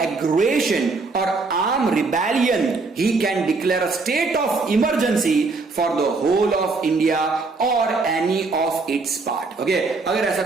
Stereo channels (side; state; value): left; quieter; 3.9 dB